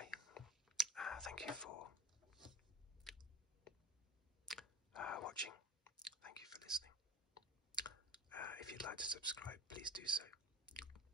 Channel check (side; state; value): both; normal; correlation 0.34